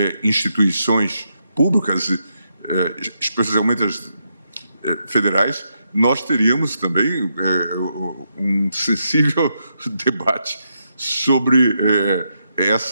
instituições públicas, especialmente as federais, nós teríamos também um sensível debate sobre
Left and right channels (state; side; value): inverted; both; correlation -0.81